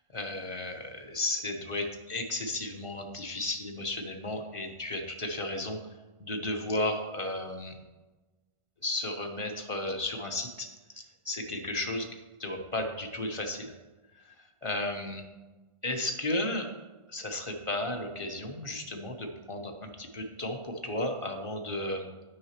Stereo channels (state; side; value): late; left; 1.5 ms